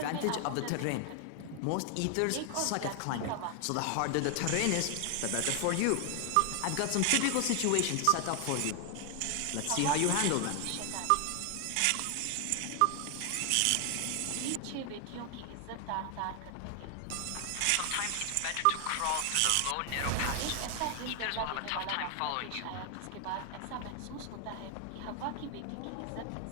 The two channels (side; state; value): both; different; correlation 0.00